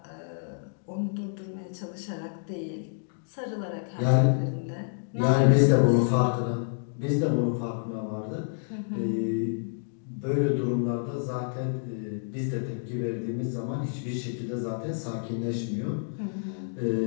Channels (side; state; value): right; silent; digital silence